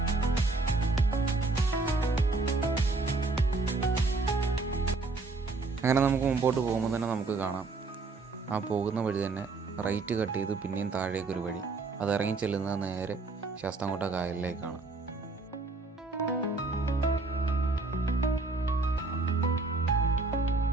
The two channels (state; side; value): quieter; left; 3.7 dB